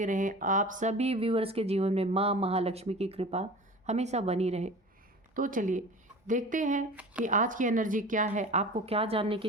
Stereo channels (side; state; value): both; normal; correlation 0.38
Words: रहें। आप सभी व्यूअर्स के जीवन में माँ महालक्ष्मी की कृपा हमेशा बनी रहे। तो चलिए देखते हैं कि आज की एनर्जी क्या है, आपको क्या जानने